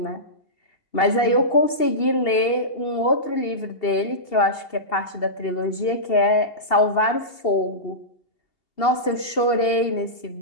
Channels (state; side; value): late; right; 2.8 ms